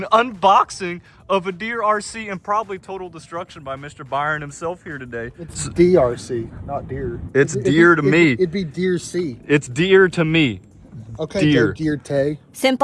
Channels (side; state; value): both; identical; correlation 1.00